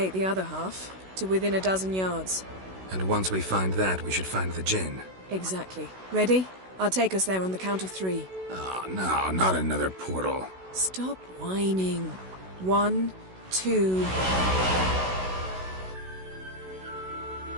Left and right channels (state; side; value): late; left; 16 ms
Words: the other half, to within a dozen yards. And once we find that, we should find the gin. Exactly. Ready? I'll take us there on the count of 3. Oh, no, not another portal. Stop whining. 1, 2...